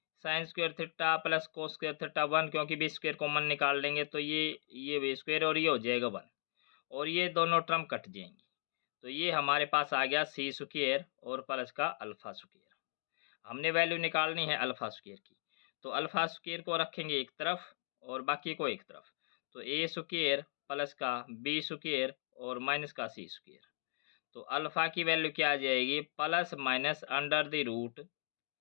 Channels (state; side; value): silent; right; digital silence